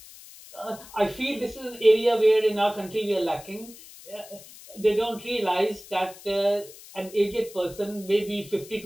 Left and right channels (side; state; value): left; noise; hiss, 19 dB below the sound